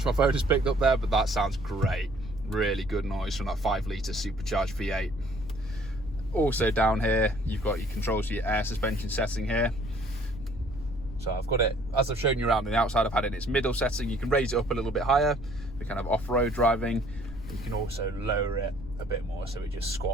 my phone has picked up there, but that sounds great. Really good noise from that 5-litre supercharged V8. Also down here, you've got your controls for your air suspension setting here. So I've got it, as I've shown you around on the outside, I've had it in its middle setting. You can raise it up a little bit higher for kind of off-road driving. You can also lower it a bit more so it just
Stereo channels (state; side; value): noise; left; rumble, 13 dB below the sound